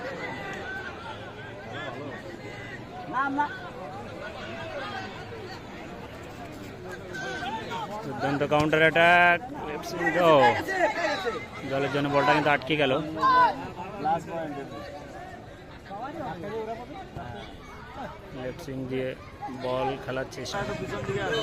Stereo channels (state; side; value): identical; both; correlation 1.00